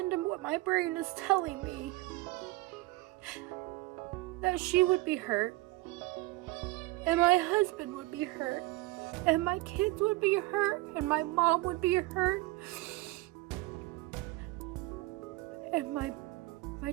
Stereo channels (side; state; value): left; quieter; 20.5 dB